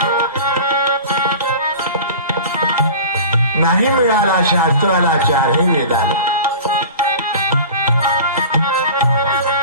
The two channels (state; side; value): inverted; both; correlation -0.37